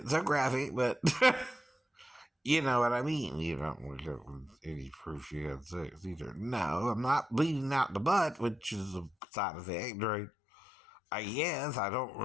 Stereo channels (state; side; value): drops out; right; at 9.2 s